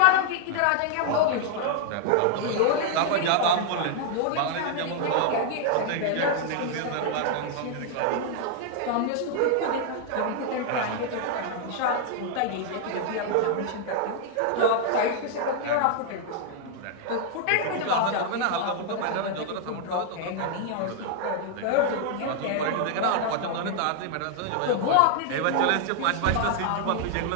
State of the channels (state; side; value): different; both; correlation 0.00